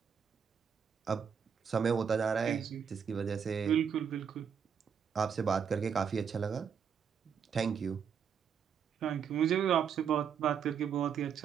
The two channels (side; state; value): left; quieter; 7.3 dB